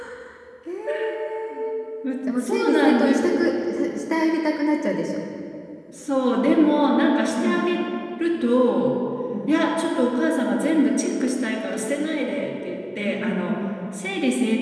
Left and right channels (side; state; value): both; identical; correlation 1.00